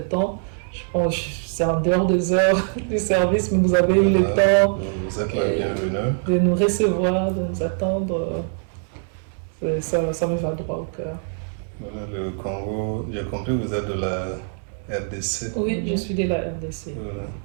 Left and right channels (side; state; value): left; silent; 63 dB below the other